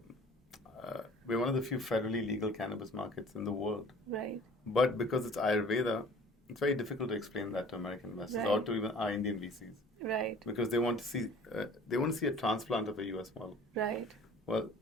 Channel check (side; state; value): both; normal; correlation 0.48